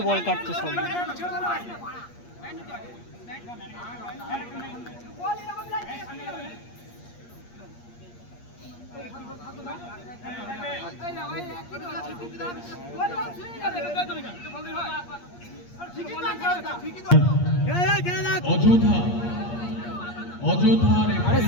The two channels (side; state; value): right; late; 8.5 ms